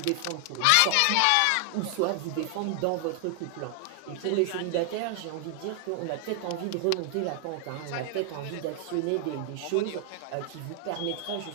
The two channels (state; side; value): different; both; correlation 0.00